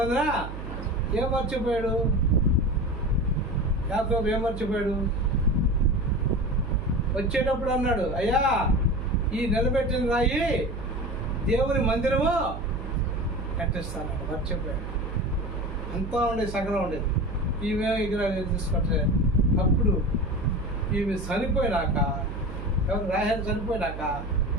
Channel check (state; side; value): noise; right; hum, 8 dB below the sound